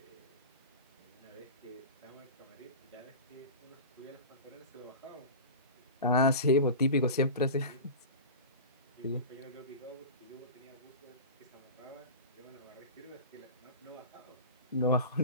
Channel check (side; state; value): both; inverted; correlation -0.30